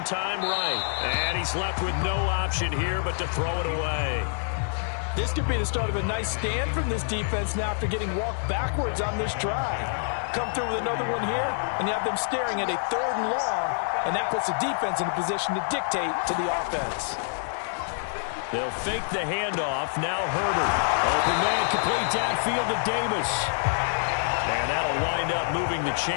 time right. And he's left with no option here but to throw it away. This could be the start of a nice stand from this defense now after getting walked backwards on this drive. Come through with another one here, and you have them staring at a 3rd and long, and that puts the defense in a position to dictate to the offense. They'll fake the handoff. Now Herbert. Open man complete downfield to Davis. And that'll wind up moving the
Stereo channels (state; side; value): silent; right; digital silence